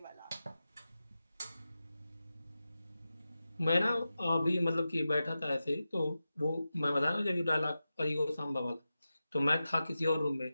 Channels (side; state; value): both; inverted; correlation -0.93